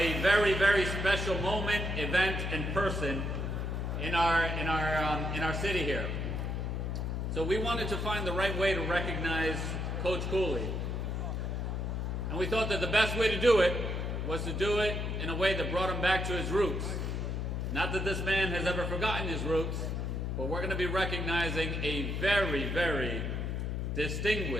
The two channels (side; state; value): left; noise; hum, 1 dB below the sound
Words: very, very special moment, event, and person in our city here. So we wanted to find the right way to recognize Coach Cooley. And we thought that the best way to do it was to do it in a way that brought him back to his roots. Not that this man has ever forgotten his roots, but we're going to be recognizing a very, very